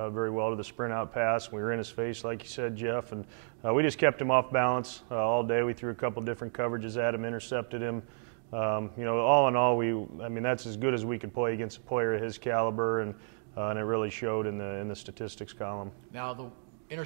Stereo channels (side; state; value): left; silent; digital silence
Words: very well to the sprint out pass. We were in his face, like you said, Jeff, and we just kept him off balance all day. We threw a couple different coverages at him, intercepted him. All in all, that's as good as we could play against a player of his caliber, and it really showed in the statistics column. Now, the